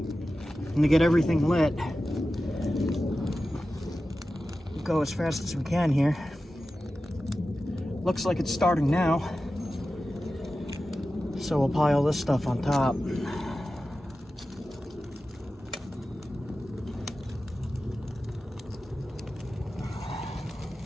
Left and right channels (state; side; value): normal; both; correlation 0.94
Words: to get everything lit. We'll go as fast as we can here. Looks like it's starting now. So we'll pile this stuff on top.